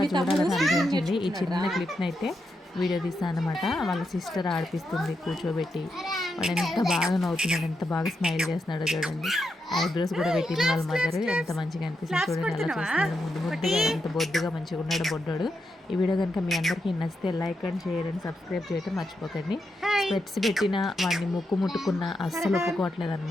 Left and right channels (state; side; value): normal; both; correlation 0.85